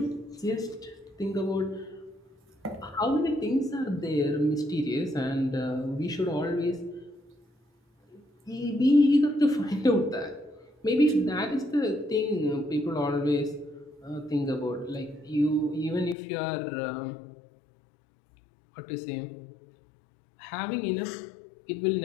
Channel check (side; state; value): right; drops out; at 16.2 s